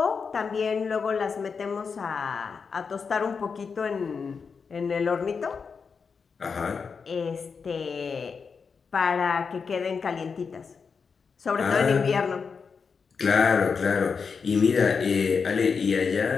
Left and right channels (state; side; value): quieter; right; 5.5 dB